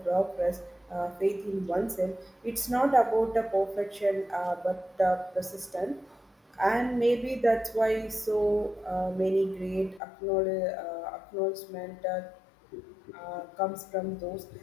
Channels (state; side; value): drops out; right; at 10.0 s